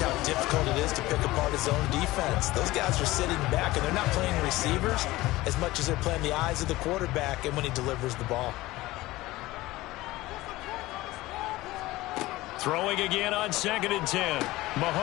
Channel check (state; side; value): quieter; right; 18.5 dB